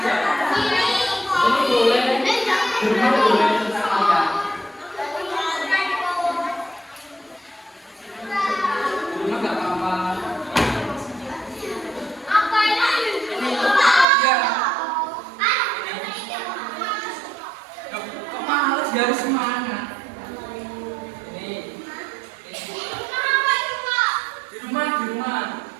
Ini boleh, cuma boleh tentang kalian. Cuma nggak apa-apa. Dia harus semangat. Ini. Di rumah.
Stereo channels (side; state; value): left; drops out; at 14.1 s